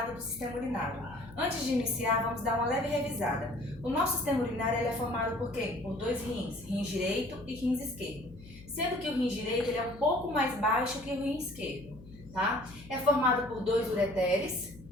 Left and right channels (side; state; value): left; noise; hum, 19 dB below the sound